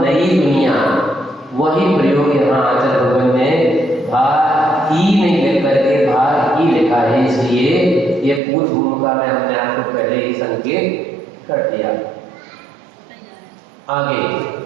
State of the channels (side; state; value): left; drops out; at 8.4 s